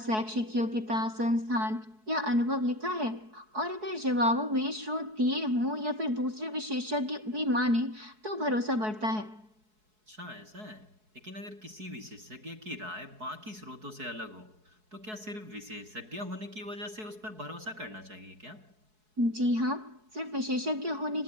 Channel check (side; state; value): left; late; 4.7 ms